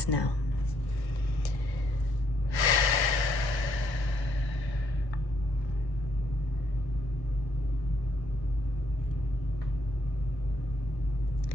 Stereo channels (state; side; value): late; right; 1.3 ms